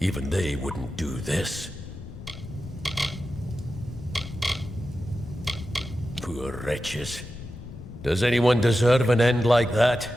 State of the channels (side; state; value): left; noise; rumble, 13 dB below the sound